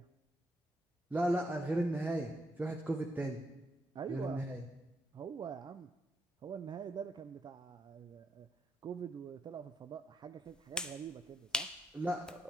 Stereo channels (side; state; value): both; normal; correlation 0.79